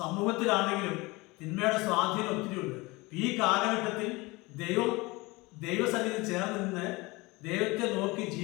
തിന്മയുടെ സ്വാധീനം ഒത്തിരിയുണ്ട്. ഈ കാലഘട്ടത്തിൽ ദൈവസന്നിധി ചേർന്ന് നിന്ന് ദൈവത്തെ നോക്കി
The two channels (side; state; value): right; quieter; 23.5 dB